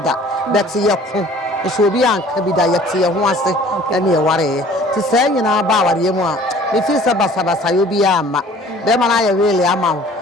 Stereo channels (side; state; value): both; normal; correlation 0.51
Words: da bet ye ko so obi anka bi da yete ye ho ase na ye ware ti say nyina ba ware mu a me fi sa basa yo bi ama be ma na ye wele ama